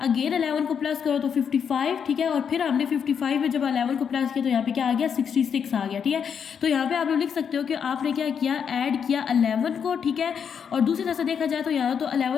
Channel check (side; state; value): right; quieter; 7.3 dB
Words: अगेन 11 को प्लस करो तो 55, ठीक है। और फिर हमने 55 में जब 11 को प्लस किया तो यहाँ पे क्या आ गया 66 आ गया, ठीक है। तो यहाँ पे आप लोग लिख सकते हो कि आपने क्या किया ऐड किया 11 को, ठीक है। और दूसरी तरह से देखा जाए तो यहाँ तो